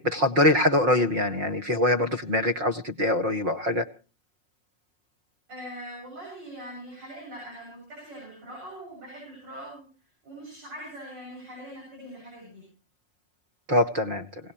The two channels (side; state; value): left; late; 5.5 ms